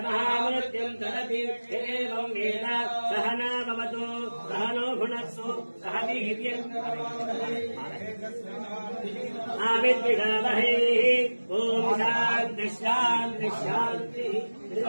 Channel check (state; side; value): inverted; both; correlation -1.00